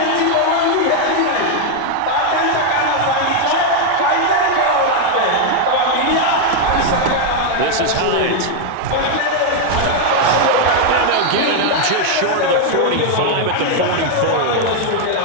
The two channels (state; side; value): different; both; correlation 0.01